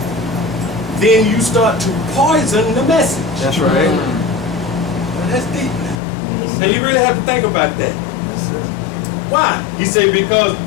then you start to poison the message. That's right. Well, that's deep now. Now you really have to think about that. Why? He said, because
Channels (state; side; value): drops out; right; at 6.0 s